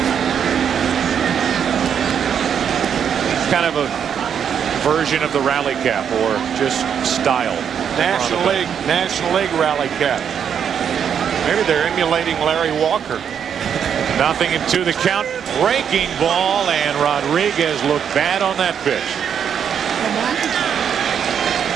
Kind of a version of the rally cap, or just style. National League rally cap. Maybe they're emulating Larry Walker. Nothing into the count. Breaking ball, and Rodriguez looked bad on that pitch.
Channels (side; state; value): left; quieter; 8.0 dB